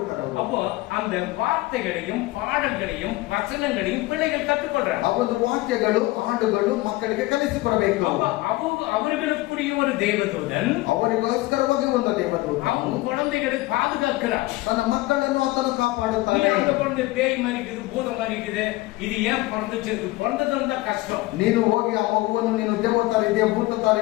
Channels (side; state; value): right; quieter; 19.8 dB